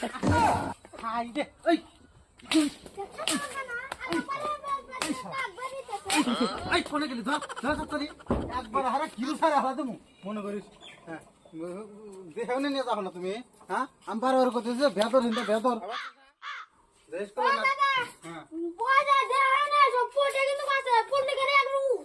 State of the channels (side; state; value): both; identical; correlation 1.00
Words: হাই রে এই এই কোনে গেলি ধর ধর তাড়াতাড়ি একবার হারা কিলো সারা হারা দেবো মনে করিস হ্যাঁ দেও না নিয়ে যাবো না তুমি হ্যাঁ আমি বারবার করতেছি ভেতর হিন্দা ভেতর দেশ করে না হ্যাঁ